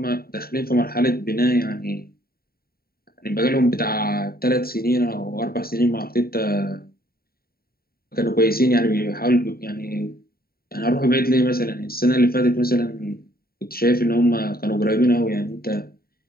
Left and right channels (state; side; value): late; right; 0.44 ms